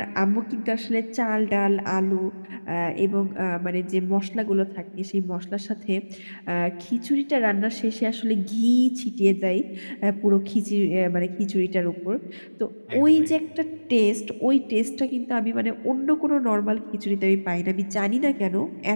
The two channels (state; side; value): inverted; both; correlation -1.00